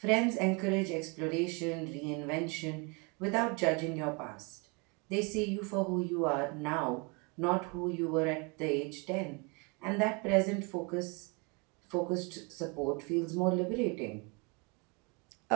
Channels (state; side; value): quieter; left; 31.0 dB